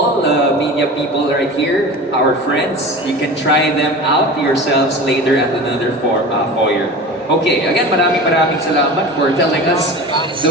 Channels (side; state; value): both; normal; correlation 0.33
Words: the media people right here, our friends, you can try them out yourselves later at another foyer. Okay, again, maraming salamat for telling us